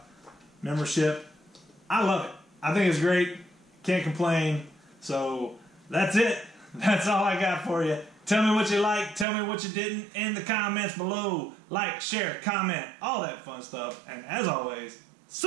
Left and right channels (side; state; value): left; drops out; at 9.2 s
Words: membership. I love it. I think it's great. Can't complain. So that's it. That's all I got for you. Tell me what you liked. Tell me what you didn't in the comments below. Like, share, comment, all that fun stuff. And as always,